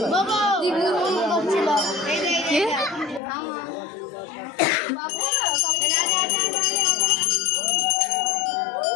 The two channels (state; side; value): drops out; right; at 3.2 s